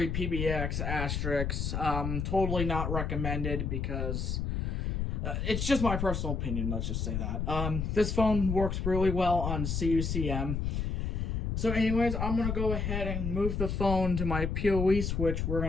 PBX, asterisks. Totally not recommended because it's just my personal opinion, let's just say that. This phone works really well on CUCM. So anyways, I'm going to go ahead and move the phone to my PoE switch. We're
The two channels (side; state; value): left; noise; rumble, 1 dB below the sound